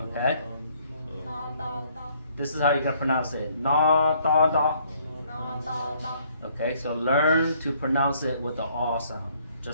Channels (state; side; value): inverted; both; correlation -0.64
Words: this is how you're gonna pronounce it. Na da da. Okay, so learn to pronounce it with the R sound,